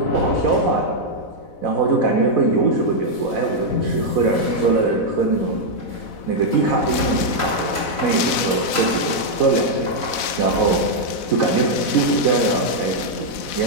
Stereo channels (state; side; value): late; right; 4.1 ms